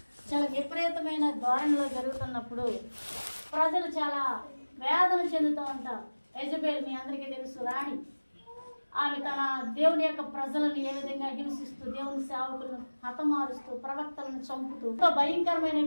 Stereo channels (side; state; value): both; inverted; correlation -1.00